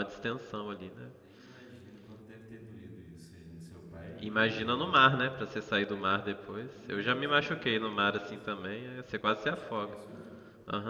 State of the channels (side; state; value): both; identical; correlation 1.00